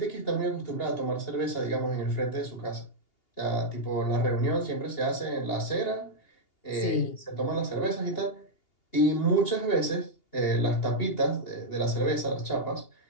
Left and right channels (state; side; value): late; right; 2.8 ms